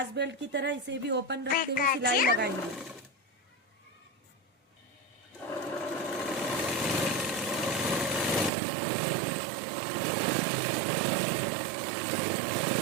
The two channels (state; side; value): drops out; left; at 8.5 s